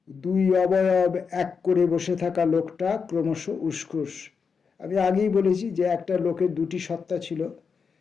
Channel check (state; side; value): quieter; right; 5.7 dB